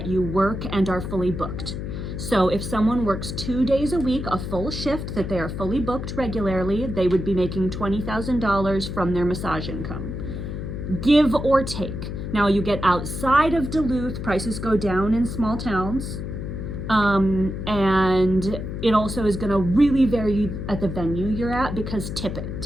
you work and are fully booked. So if someone works 2 days a week, a full shift that they are fully booked regularly, they would be making $20,000 from their massage income. Give or take. Now you get outside of Duluth, prices go down in small towns. And it also is gonna really vary at the venue you're at because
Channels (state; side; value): noise; left; hum, 6 dB below the sound